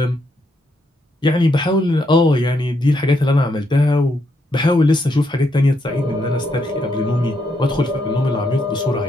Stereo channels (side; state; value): both; normal; correlation 0.77